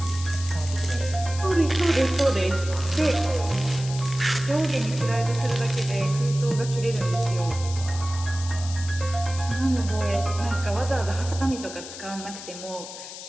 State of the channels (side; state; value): left; noise; hiss, 12 dB below the sound